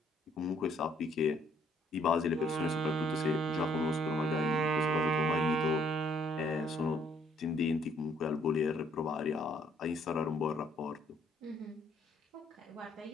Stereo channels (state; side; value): normal; both; correlation 0.65